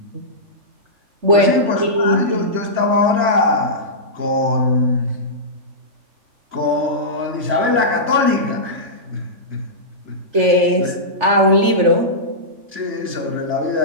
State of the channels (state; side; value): late; left; 3.4 ms